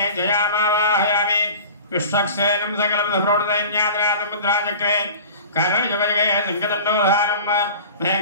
जयामावाहयामि विश्वक्सेनं सकलविधप्रौढदैन्याद्राजमुद्राचक्रे कर्णयुगयुगे संगतन्दोधारं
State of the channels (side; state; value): both; inverted; correlation -0.39